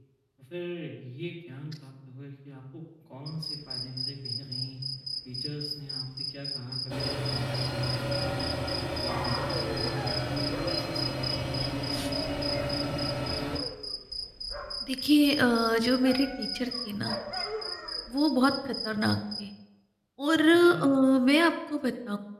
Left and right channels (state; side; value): identical; both; correlation 1.00